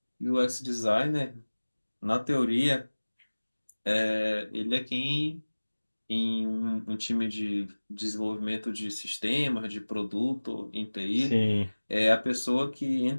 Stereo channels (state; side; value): inverted; both; correlation -1.00